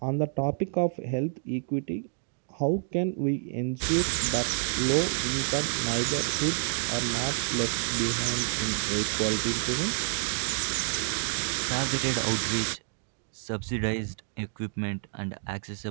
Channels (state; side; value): silent; left; digital silence